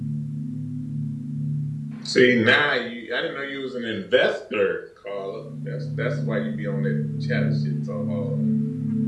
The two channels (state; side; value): identical; both; correlation 1.00